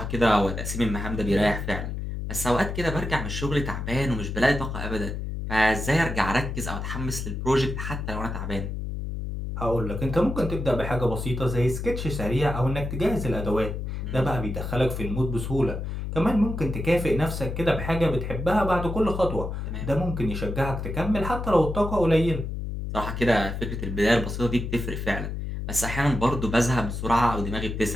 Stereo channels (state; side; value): noise; left; hum, 5 dB below the sound